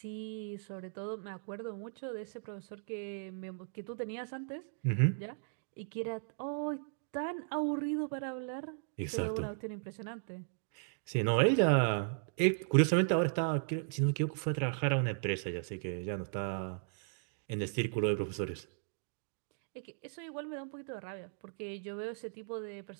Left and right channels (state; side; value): silent; left; digital silence